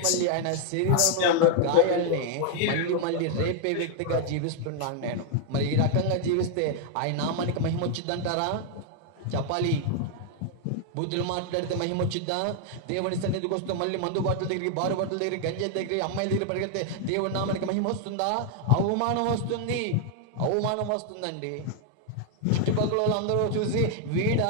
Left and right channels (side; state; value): both; different; correlation 0.00